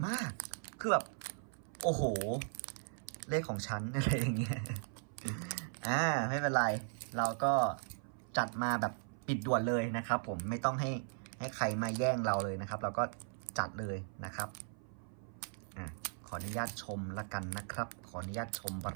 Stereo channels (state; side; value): silent; left; 53 dB below the other